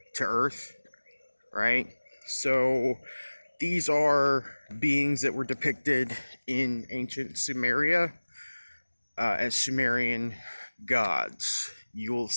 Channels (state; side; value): inverted; both; correlation -1.00